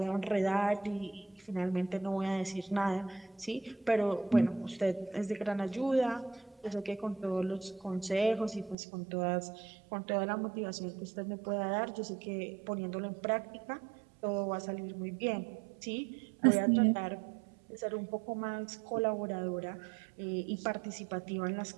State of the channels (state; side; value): drops out; left; at 8.8 s